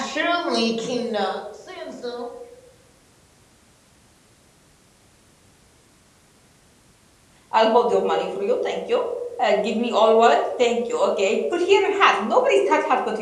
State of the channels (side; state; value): both; identical; correlation 1.00